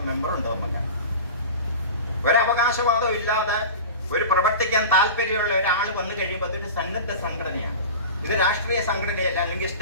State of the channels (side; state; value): both; inverted; correlation -0.32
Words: മെമ്പറുണ്ട്. നമുക്ക് ഒരവകാശവാദവും ഇല്ലാതെ ഒരു പ്രവർത്തിക്കാൻ താല്പര്യമുള്ള ഒരാൾ വന്നു കഴിയുമ്പോൾ അതൊരു സന്നദ്ധ സംഘടനയാണ്. ഇത് രാഷ്ട്രീയ സംഘടനയല്ല, അല്ലെങ്കിൽ